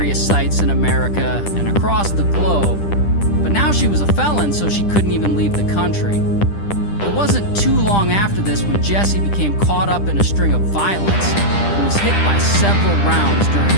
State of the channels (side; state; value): right; late; 10 ms